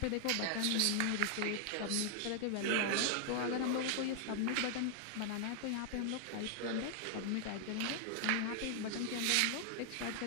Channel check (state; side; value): different; both; correlation 0.00